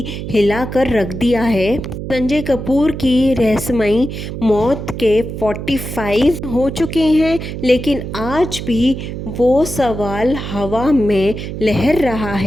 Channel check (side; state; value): right; noise; hum, 7 dB below the sound